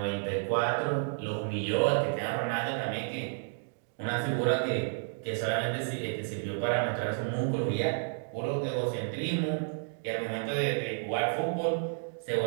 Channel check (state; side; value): silent; left; digital silence